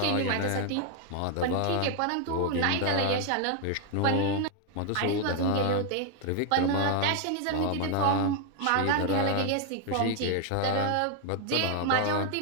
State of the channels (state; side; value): different; both; correlation 0.00